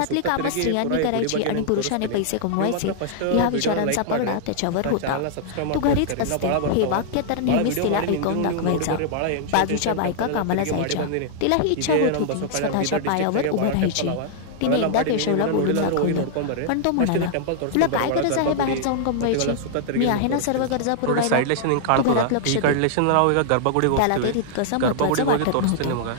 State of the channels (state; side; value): different; both; correlation -0.01